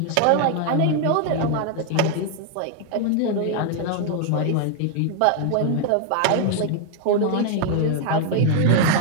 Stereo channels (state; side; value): different; both; correlation 0.00